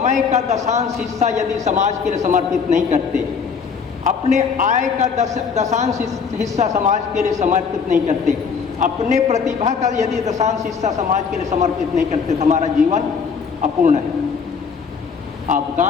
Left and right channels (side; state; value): right; quieter; 5.9 dB